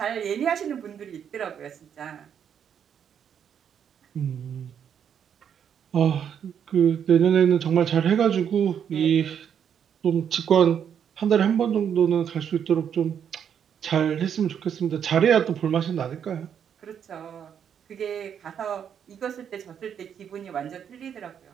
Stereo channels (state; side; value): quieter; left; 8.3 dB